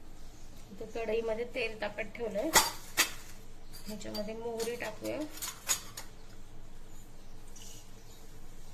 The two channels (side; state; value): both; identical; correlation 1.00